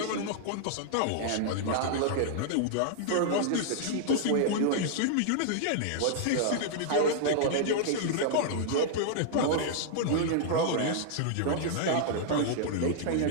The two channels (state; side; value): different; both; correlation -0.01